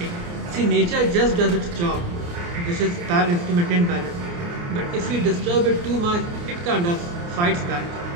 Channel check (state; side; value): late; left; 29 ms